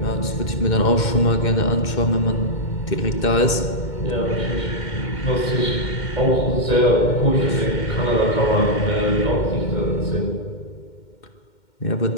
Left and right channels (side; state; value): right; late; 2.1 ms